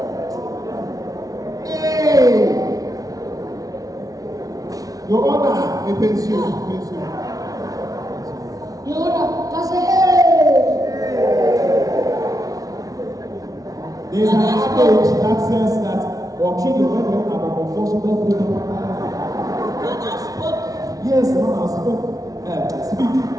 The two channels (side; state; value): left; late; 0.18 ms